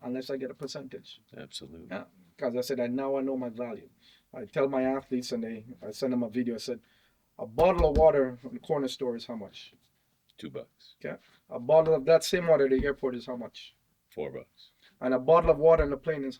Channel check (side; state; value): both; identical; correlation 1.00